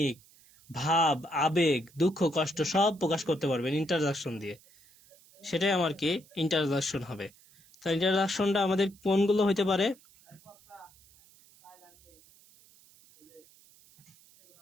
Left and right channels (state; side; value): noise; right; hiss, 27 dB below the sound